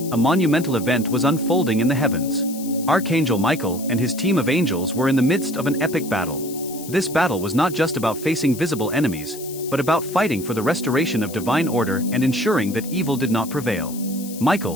a monumental event was unfolding in the heavens. Archangel Michael and his team of angels were in the midst of an epic battle. This battle was not just about facing visible enemies, but about fighting for the restoration of divine order and ensuring that evil did not prevail.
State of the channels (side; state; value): left; noise; hiss, 14 dB below the sound